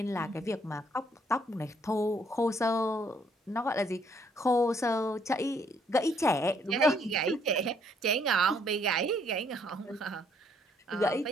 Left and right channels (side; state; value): both; normal; correlation 0.67